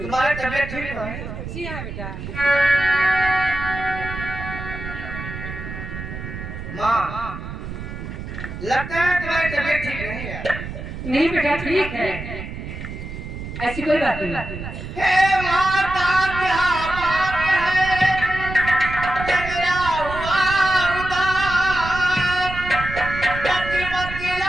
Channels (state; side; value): noise; right; rumble, 8 dB below the sound